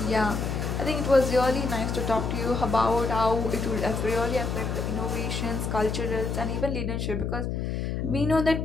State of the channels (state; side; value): noise; left; hum, 2 dB below the sound